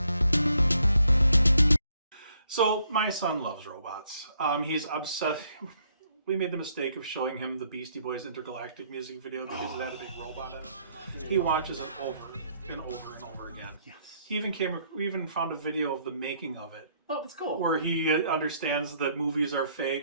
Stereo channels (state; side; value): inverted; both; correlation -0.69